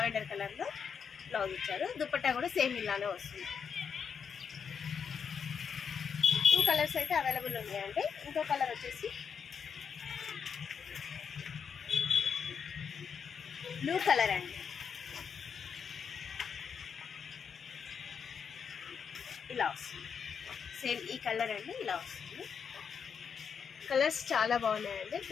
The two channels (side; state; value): right; quieter; 6.8 dB